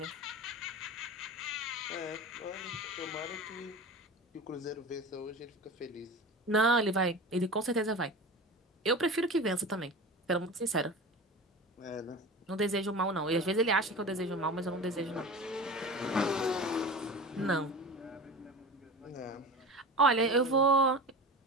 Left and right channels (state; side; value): normal; both; correlation 0.32